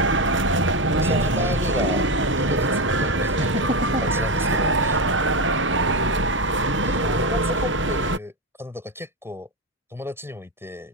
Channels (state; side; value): normal; both; correlation 0.12